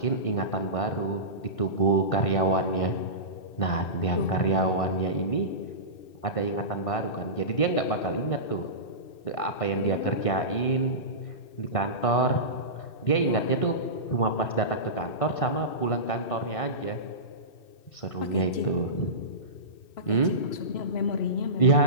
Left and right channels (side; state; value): right; late; 2.6 ms